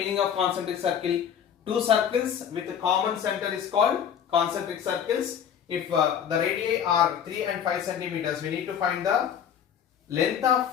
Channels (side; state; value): right; quieter; 8.6 dB